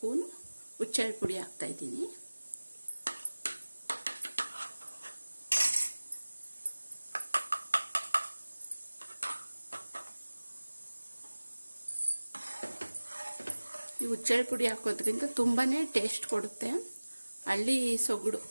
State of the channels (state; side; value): inverted; both; correlation -1.00